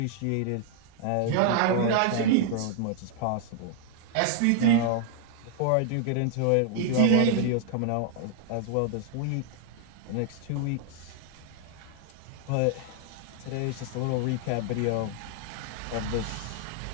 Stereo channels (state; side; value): different; both; correlation -0.01